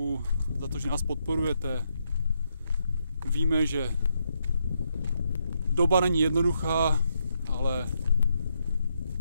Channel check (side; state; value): both; inverted; correlation -0.78